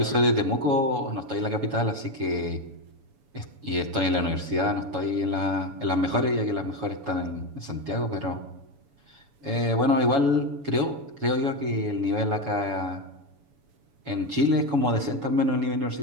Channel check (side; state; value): left; late; 7.1 ms